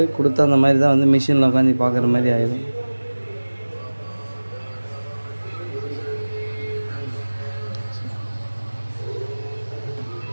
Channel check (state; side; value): inverted; both; correlation -1.00